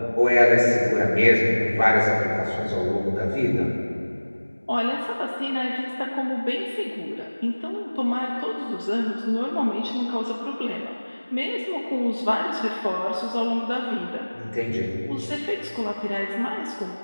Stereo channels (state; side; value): inverted; both; correlation -1.00